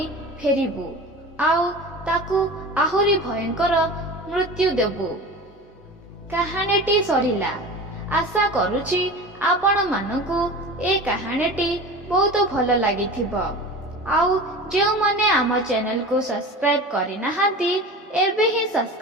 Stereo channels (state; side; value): normal; both; correlation 0.33